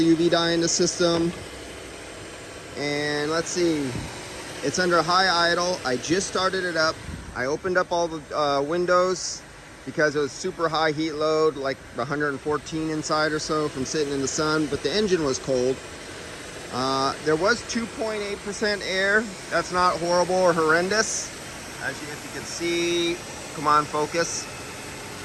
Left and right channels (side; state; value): both; identical; correlation 1.00